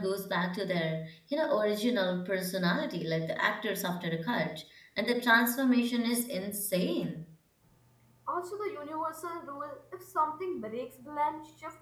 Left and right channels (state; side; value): identical; both; correlation 1.00